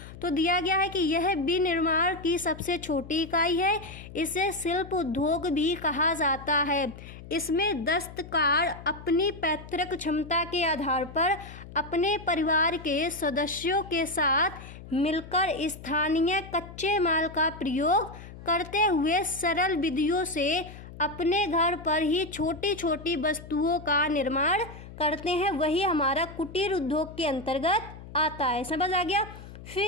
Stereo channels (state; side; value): noise; left; hum, 15 dB below the sound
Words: तो दिया गया है कि यह विनिर्माण की सबसे छोटी इकाई है, इसे शिल्प उद्योग भी कहा जाता है। इसमें दस्तकार अपनी पैतृक क्षमता के आधार पर अपने परिवार के सदस्यों के साथ मिलकर स्थानीय कच्चे माल का प्रयोग करते हुए सरल विधियों से अपने घर पर ही छोटी छोटी वस्तुओं का निर्माण करते हैं, वही हमारा कुटीर उद्योग के अंतर्गत आता है। समझ आ गया।